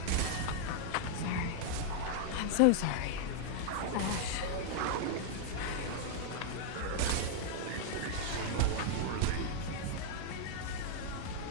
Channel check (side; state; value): both; different; correlation -0.01